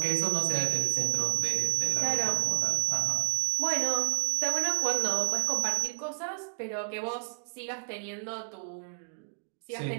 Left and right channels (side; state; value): left; silent; digital silence